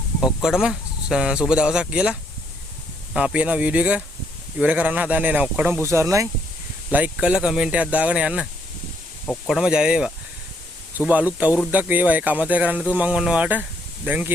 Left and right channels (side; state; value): both; normal; correlation 0.71